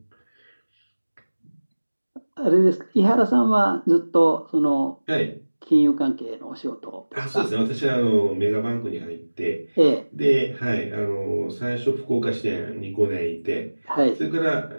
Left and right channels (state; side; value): inverted; both; correlation -1.00